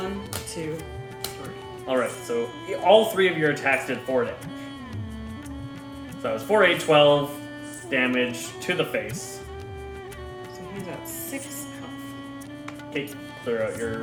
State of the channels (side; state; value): both; identical; correlation 1.00